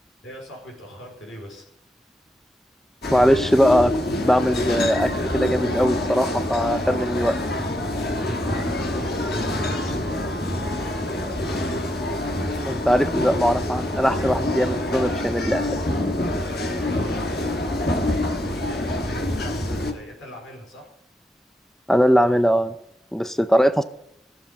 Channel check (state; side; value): normal; both; correlation 0.83